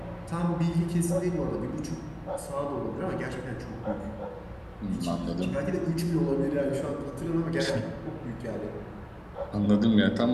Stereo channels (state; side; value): identical; both; correlation 1.00